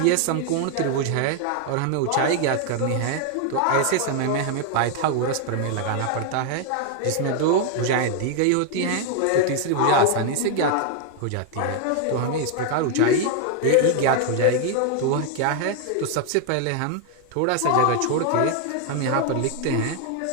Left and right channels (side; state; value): both; different; correlation 0.00